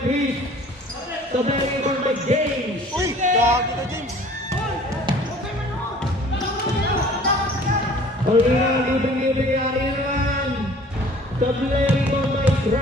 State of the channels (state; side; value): normal; both; correlation 0.50